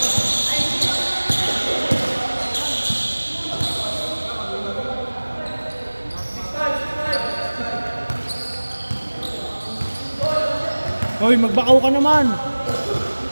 Hoy, magbakaw ka naman!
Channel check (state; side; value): inverted; both; correlation -1.00